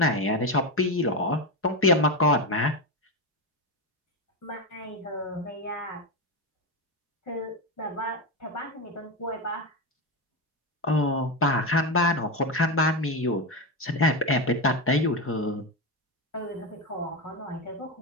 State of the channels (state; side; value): normal; both; correlation 0.14